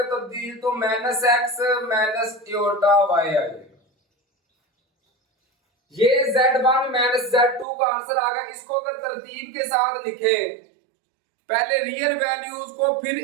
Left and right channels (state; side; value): drops out; left; at 7.7 s